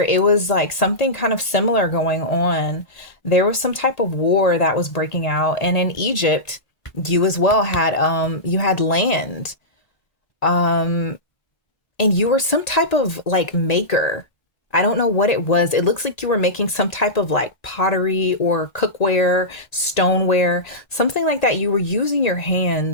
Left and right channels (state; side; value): late; right; 1.8 ms